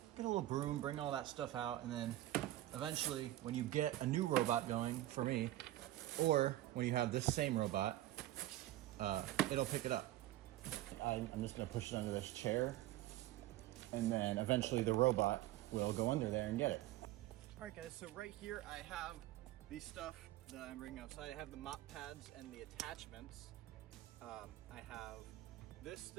get a little broom, bring all that stuff out, and then eventually when you get a new robot going, for me, or when you have this same robot, it'll pick it up. I'm just gonna push it under this chair, and then eventually the robot will go under there and get it. All right guys, so right here I have the stuff that I'm bringing outside. I have the mop pads and the attachments. I have this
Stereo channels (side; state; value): left; quieter; 15.5 dB